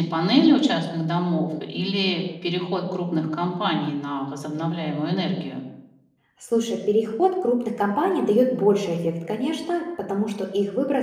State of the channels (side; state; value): both; identical; correlation 1.00